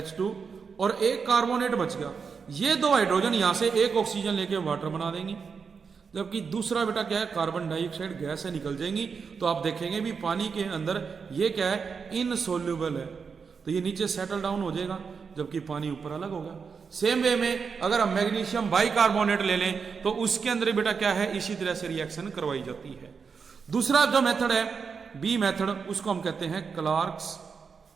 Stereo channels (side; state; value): left; quieter; 5.7 dB